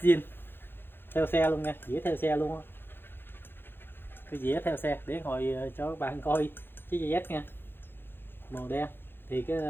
zin theo xe luôn nha, dĩa theo xe luôn á. Cái dĩa theo xe để hồi cho các bạn coi chiếc GS nha, màu đen. Thì cái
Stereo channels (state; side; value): late; right; 0.10 ms